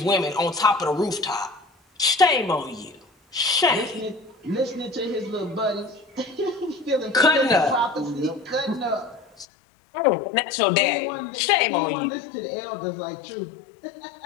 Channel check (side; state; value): right; drops out; at 9.5 s